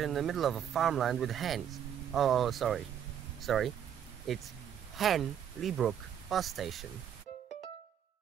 in the middle of a farmland with hens. Oh, sorry. It's Henley-Brook bus station.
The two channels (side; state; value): left; quieter; 9.2 dB